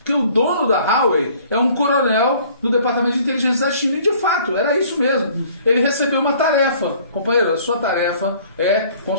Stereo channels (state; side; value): inverted; both; correlation -0.55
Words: o dono da Huawei é um coronel do Departamento de Inteligência da China. E, de fato, era isso mesmo. Ele recebeu uma tarefa. Companheiro, a sua tarefa é